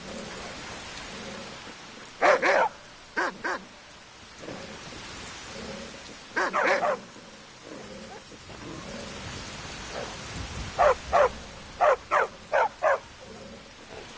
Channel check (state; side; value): identical; both; correlation 1.00